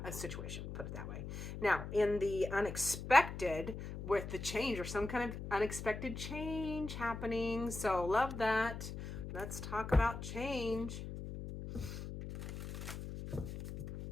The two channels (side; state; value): left; noise; hum, 7 dB below the sound